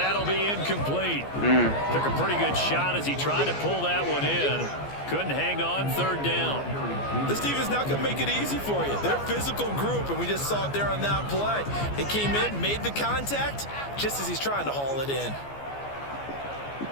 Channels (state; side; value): late; right; 14 ms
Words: be incomplete. Took a pretty good shot as he tried to pull that one in. Couldn't hang on 3rd down. This team is not going to make it easy for you. They're a physical group, and we just saw it there on that play. He came in, made the contact, just as he's trying to haul it in.